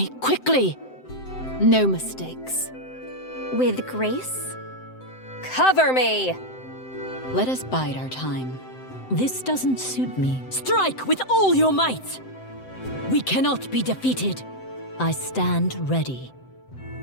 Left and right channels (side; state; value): right; late; 7.8 ms